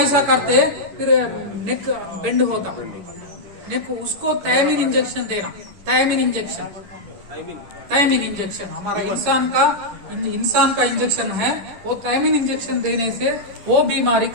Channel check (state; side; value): late; left; 10 ms